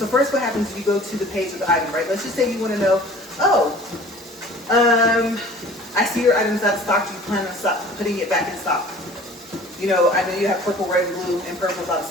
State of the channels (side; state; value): both; normal; correlation 0.46